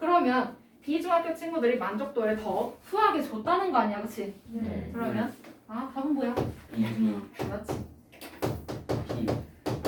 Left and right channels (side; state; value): both; identical; correlation 1.00